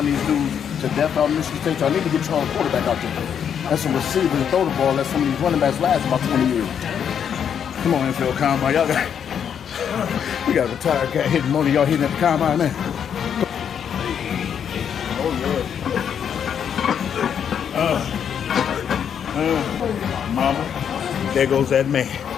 these dudes to death out of Michigan State? So I need to get y'all a quarterback out there. That's some receivers and throw the ball. Let some of these running backs last about 20 years. Come on, NFL Combine. Y'all got, we got a retired guy hitting one of y'all hitting at the Combine, man. Oh, yeah. Mama, there goes that man.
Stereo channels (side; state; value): right; quieter; 8.2 dB